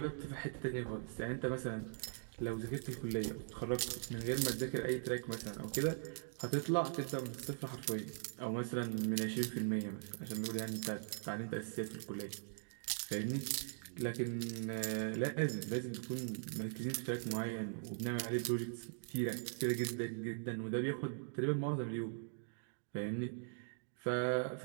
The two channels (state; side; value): silent; left; digital silence